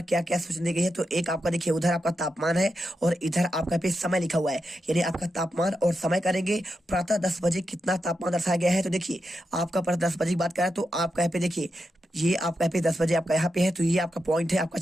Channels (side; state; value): both; normal; correlation 0.87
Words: क्या क्या सूचना दी गई है। तो एक आपका देखिए उधर आपका तापमान है और इधर आपका पे समय लिखा हुआ है, यानी आपका तापमान और समय करेंगे। प्रातः 10 बजे कितना तापमान दर्शाया गया है। तो देखिए आपका प्रातः 10 बजे की बात करें तो आपका यहाँ पे देखिए ये आपका यहाँ पे 10 बजे आपका यहाँ पे है, तो ये आपका पॉइंट है आपका